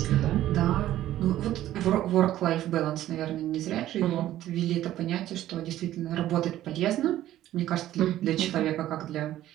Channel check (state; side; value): quieter; left; 13.5 dB